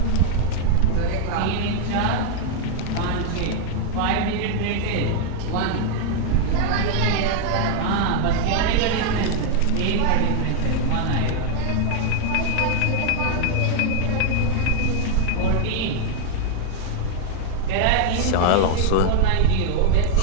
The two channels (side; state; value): both; different; correlation 0.00